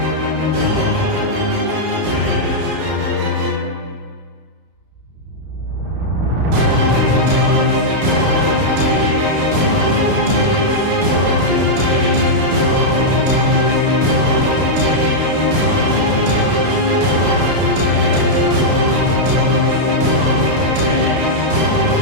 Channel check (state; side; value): late; left; 32 ms